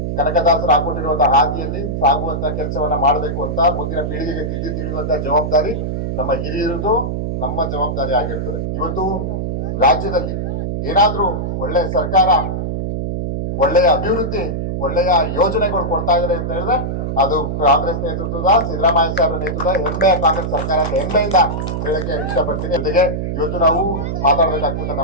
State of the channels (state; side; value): noise; right; hum, 2 dB below the sound